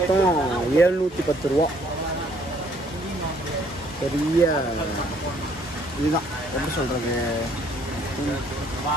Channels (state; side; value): normal; both; correlation 0.63